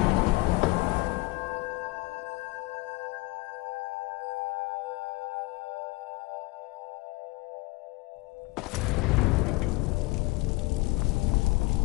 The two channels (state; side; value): quieter; right; 23.3 dB